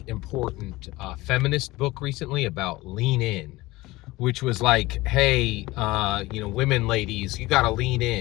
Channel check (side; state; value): right; quieter; 19.8 dB